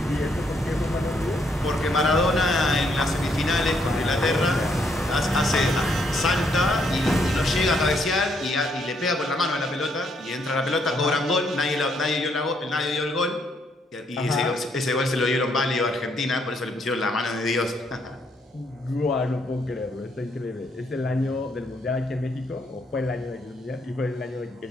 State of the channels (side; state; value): both; normal; correlation 0.72